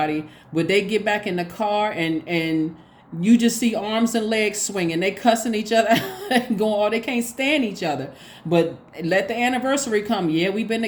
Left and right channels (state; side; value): identical; both; correlation 1.00